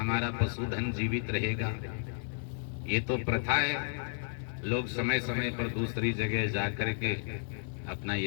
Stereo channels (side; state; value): right; silent; digital silence